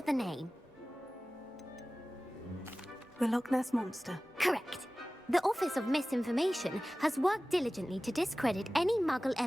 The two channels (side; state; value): both; normal; correlation 0.97